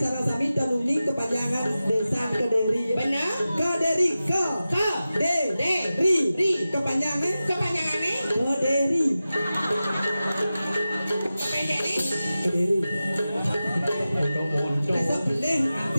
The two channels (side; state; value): both; inverted; correlation -0.94